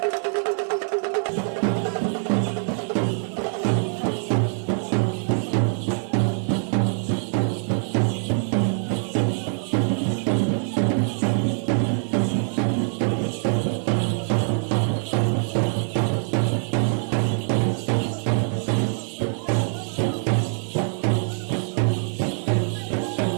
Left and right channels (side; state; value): left; silent; 63 dB below the other